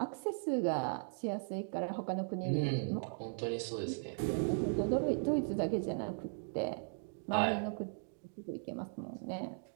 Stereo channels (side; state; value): left; silent; digital silence